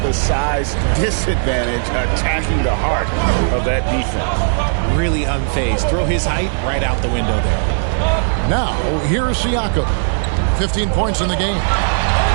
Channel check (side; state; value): left; silent; digital silence